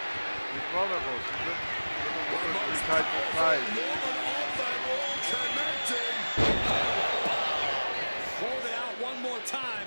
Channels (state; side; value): inverted; both; correlation -1.00